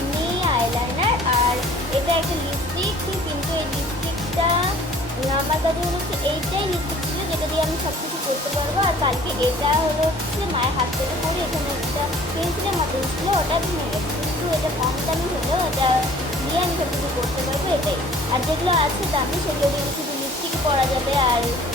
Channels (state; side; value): normal; both; correlation 0.52